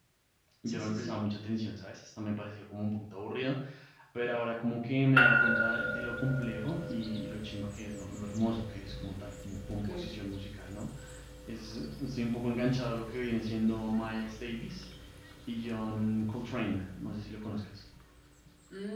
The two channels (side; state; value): both; identical; correlation 1.00